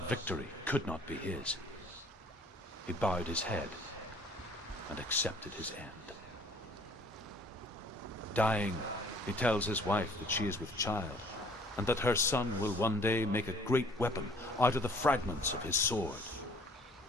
victory could not be his. He bowed his head and accepted his end. Dying, he tells his wife that she is with child, and that her son will one day make a great weapon out of the fragments of his sword.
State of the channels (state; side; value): normal; both; correlation 0.55